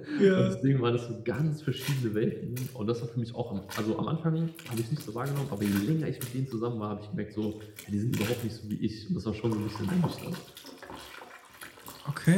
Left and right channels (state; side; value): identical; both; correlation 1.00